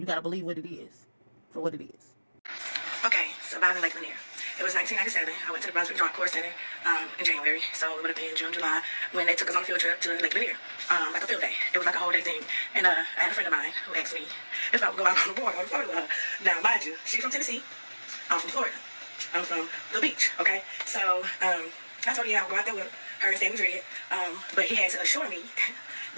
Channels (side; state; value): both; inverted; correlation -1.00